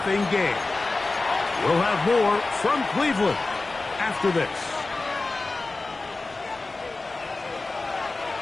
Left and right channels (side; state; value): right; quieter; 3.4 dB